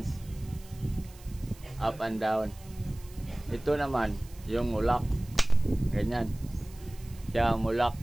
up and down. Ito naman yung mulak, ganyan siya mulak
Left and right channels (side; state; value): right; noise; hiss, 23 dB below the sound